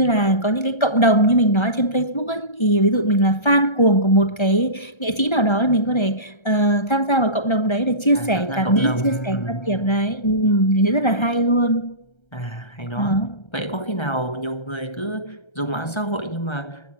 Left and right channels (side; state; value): right; late; 1.3 ms